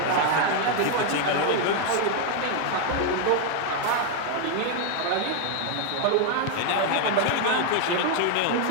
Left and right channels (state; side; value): different; both; correlation 0.00